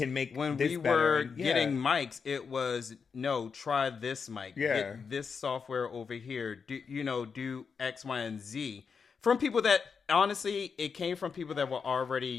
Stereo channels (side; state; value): right; quieter; 5.8 dB